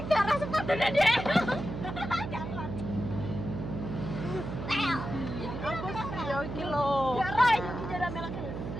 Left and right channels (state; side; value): noise; right; hum, 6 dB below the sound